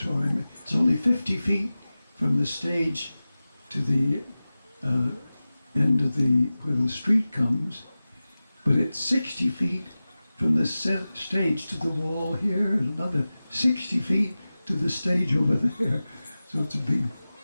It's only 50 feet from the stage to the end of where the street comes, but it's 60 feet from the stage to the wall here, and another 60 feet to the stage over there. So it's a big,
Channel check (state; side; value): inverted; both; correlation -0.96